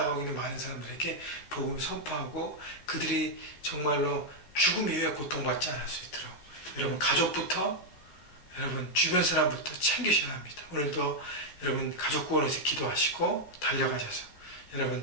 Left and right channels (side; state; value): right; late; 13 ms